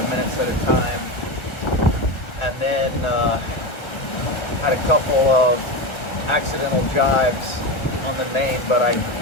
minutes at a time, and then had a couple of accidental jives on the main, but I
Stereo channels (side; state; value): right; late; 1.3 ms